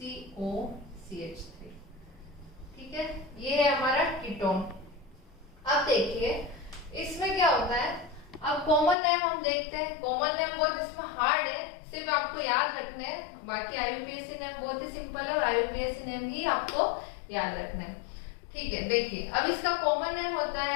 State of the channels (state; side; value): drops out; right; at 9.0 s